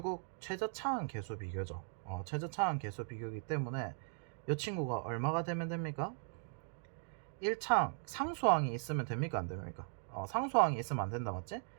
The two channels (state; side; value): silent; left; 52 dB below the other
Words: 최저차항 계수 비교죠. 최저차항 계수 비교이기 때문에 이 친구가 얼마가 되면 됩니까? 1차항 상수항이 있으면 됩니까 안 됩니까? 상수항이 있으면 안 된다 맞지?